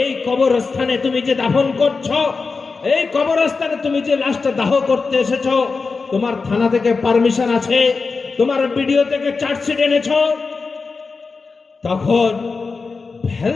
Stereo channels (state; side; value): quieter; right; 4.5 dB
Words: এই কবরস্থানে তুমি যে দাফন করছো, এই কবরস্থানে তুমি যে লাশটা দাহ করতে এসেছো, তোমার থানা থেকে পারমিশন আছে, তোমার ভিডিও থেকে চার্জশিট এনেছো। তখন ভেল